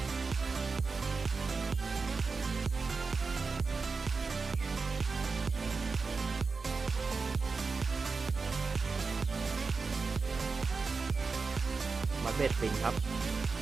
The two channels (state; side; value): quieter; left; 4.5 dB